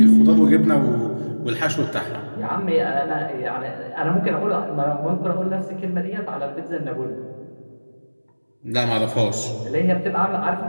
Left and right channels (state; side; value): inverted; both; correlation -1.00